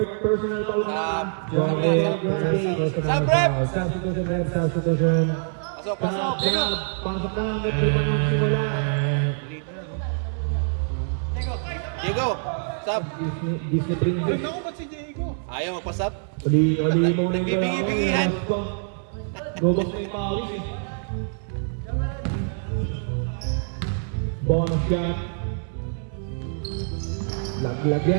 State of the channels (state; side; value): silent; left; 62 dB below the other